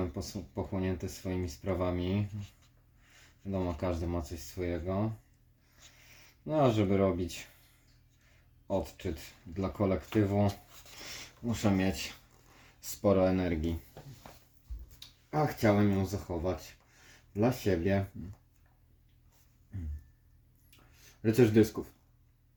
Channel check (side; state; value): both; identical; correlation 1.00